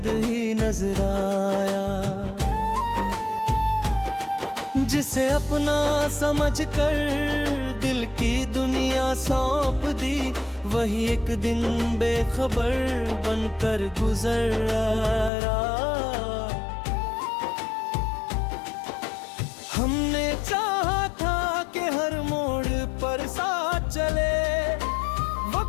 ही नजर आया। जिसे अपना समझकर दिल की दुनिया सौंप दी, वही एक दिन बेखबर बनकर गुजर आया। हमने चाहा था कि हर मोड़ पर साथ चले,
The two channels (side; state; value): right; drops out; at 15.3 s